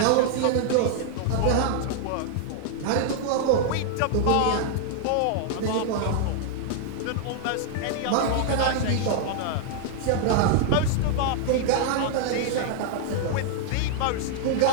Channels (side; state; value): both; different; correlation -0.01